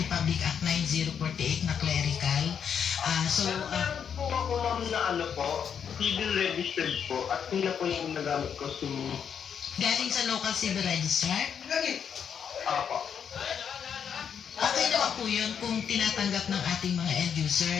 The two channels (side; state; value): right; quieter; 7.7 dB